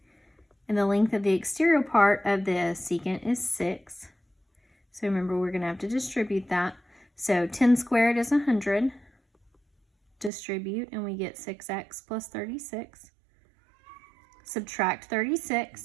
And the length of the exterior part of the secant is 6. So remember, we're going to have to distribute that. So 10 squared is 100. Distribute, and we get 6x plus 36. Subtract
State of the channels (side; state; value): left; drops out; at 10.3 s